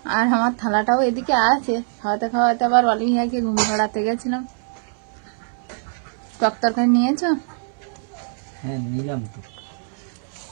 আর আমার থালাটাও এদিকে আছে। খাওয়াতে খাওয়াতে আবার অলিভিয়াকে ঘুম পাড়াতে গেছিলাম। টক তরকারি নিয়েছো? হ্যাঁ নিলাম তো।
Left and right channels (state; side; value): silent; left; digital silence